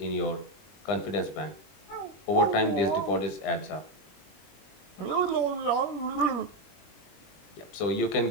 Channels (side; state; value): right; late; 21 ms